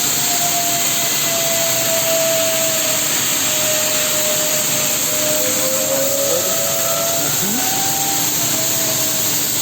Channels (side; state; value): both; identical; correlation 1.00